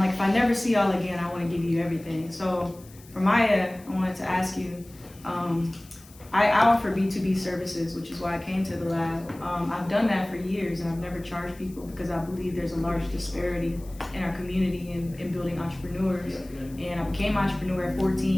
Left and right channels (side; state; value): left; noise; hiss, 23 dB below the sound